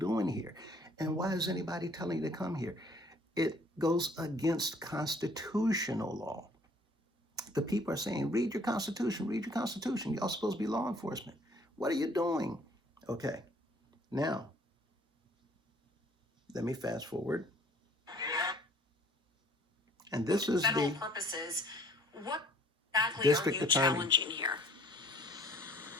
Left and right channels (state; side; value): normal; both; correlation 0.57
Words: here? And why is anybody telling you to come here? It goes against constitutional law. The people are saying, read your Constitution, read your Constitution. Y'all supposed to be law enforcement. What are you doing? Okay, now let me fast forward. And this is federal the purposes. What exactly are district you attorney. challenging here?